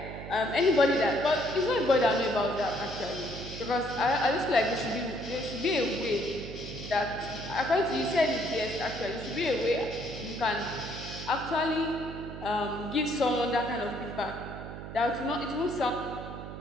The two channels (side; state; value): right; noise; hum, 10 dB below the sound